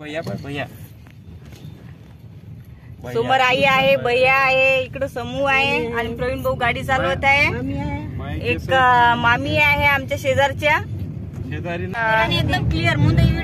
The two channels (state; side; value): identical; both; correlation 1.00